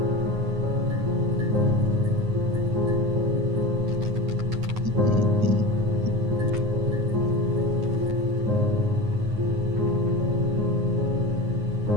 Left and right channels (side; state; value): left; late; 9.5 ms